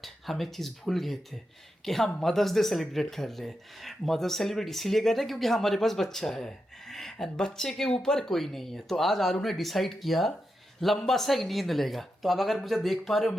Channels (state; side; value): normal; both; correlation 0.87